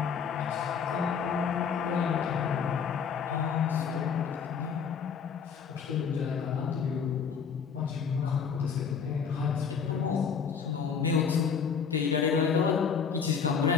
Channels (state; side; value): quieter; right; 6.5 dB